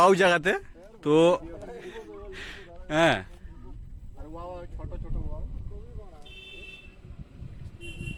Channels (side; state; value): both; identical; correlation 1.00